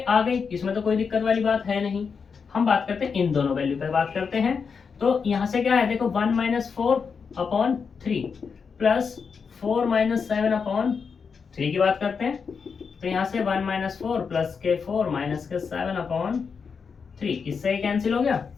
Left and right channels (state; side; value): quieter; right; 5.8 dB